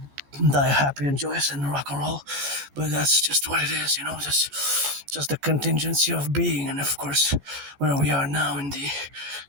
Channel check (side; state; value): left; late; 14 ms